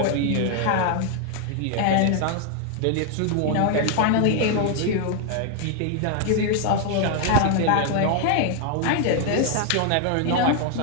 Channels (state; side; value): different; both; correlation 0.01